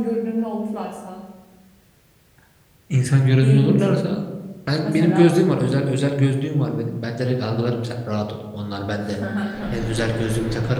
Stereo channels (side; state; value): both; identical; correlation 1.00